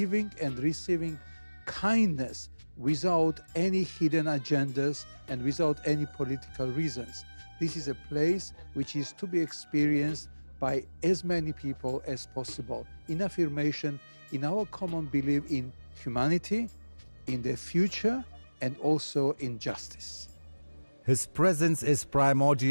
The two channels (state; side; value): inverted; both; correlation -1.00